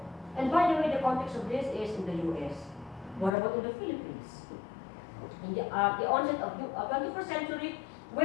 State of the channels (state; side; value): drops out; right; at 3.3 s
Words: And by the way, the context of this is in the U.S. What about in the Philippines? In the onset of the 21st century,